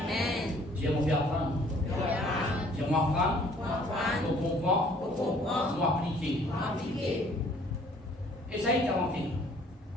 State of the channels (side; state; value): both; normal; correlation 0.58